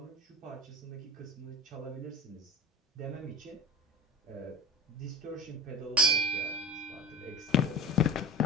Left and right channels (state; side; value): normal; both; correlation 0.35